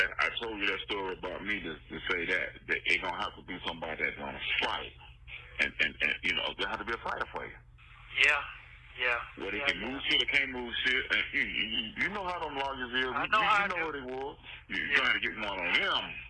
I told you that story about me to say that it's gonna have to be somebody that's gonna fight. And there have to be a fighter for you. Yeah. Where they can move shit or can't move shit. And you know how them lawyers is. I know you know what they was. You're trying to get one on them.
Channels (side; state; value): both; identical; correlation 1.00